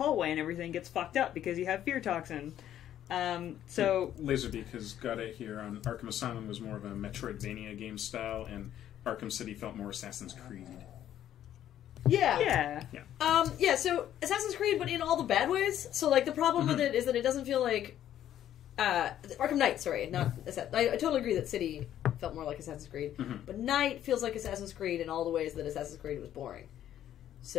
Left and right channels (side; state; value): right; quieter; 11.3 dB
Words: and everything gets fucked up because you have fear toxin. So Laserbeak has got it here on Arkham Asylum was more of a Metroidvania game style, and Arkham City felt more Assassin's Creed. Yeah. yeah, So Assassin's Creed, but in all the bad ways. So, like, the problem with it is that it doesn't feel like... Arkham Knight, sorry. Not I totally agree that City felt more like Assassin's Creed. But Knight feels like Assassin's Creed in all the ways that Assassin's Creed was boring.